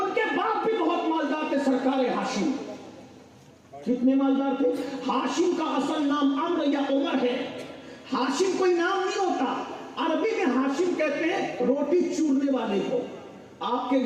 کے باپ بھی بہت مالدار تھے، سرکار ہاشم. کتنے مالدار تھے؟ ہاشم کا اصل نام عمرو یا عمر ہے. ہاشم کوئی نام نہیں ہوتا، عربی میں ہاشم کہتے ہیں روٹی چورنے والے کو. آپ کے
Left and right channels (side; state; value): both; identical; correlation 1.00